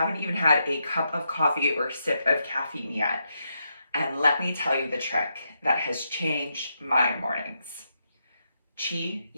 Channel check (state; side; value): inverted; both; correlation -0.82